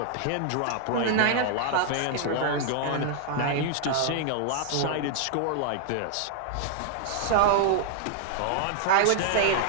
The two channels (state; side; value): different; both; correlation -0.01